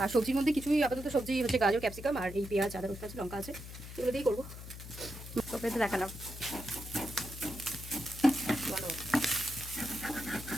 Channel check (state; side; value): noise; left; hum, 12 dB below the sound